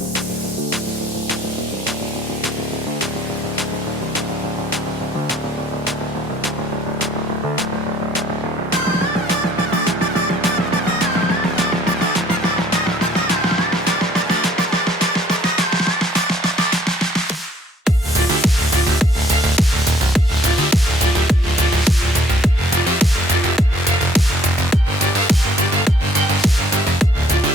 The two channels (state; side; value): normal; both; correlation 0.59